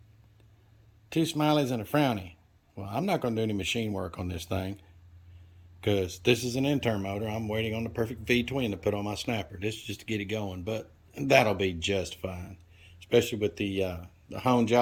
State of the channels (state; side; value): identical; both; correlation 1.00